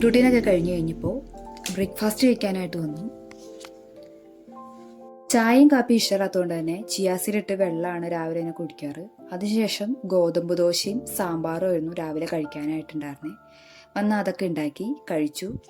റൂട്ടീനൊക്കെ കഴിഞ്ഞു കഴിഞ്ഞപ്പോൾ ബ്രേക്ക്ഫാസ്റ്റ് കഴിക്കാനായിട്ട് വന്നു. ചായയും കാപ്പി ഇഷ്ടമില്ലാത്തതുകൊണ്ട് തന്നെ ചിയാസീഡിട്ട് വെള്ളമാണ് രാവിലെ തന്നെ കുടിക്കാറ്. അതിനുശേഷം ഗോതമ്പ് ദോശയും സാമ്പാറും ആയിരുന്നു രാവിലെ കഴിക്കാനായിട്ടുണ്ടായിരുന്നേ. വന്ന് അതൊക്കെ ഉണ്ടാക്കി കഴിച്ചു.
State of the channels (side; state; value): both; identical; correlation 1.00